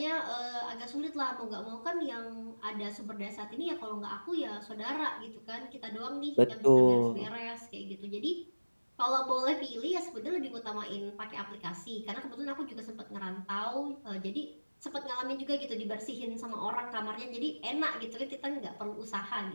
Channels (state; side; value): inverted; both; correlation -1.00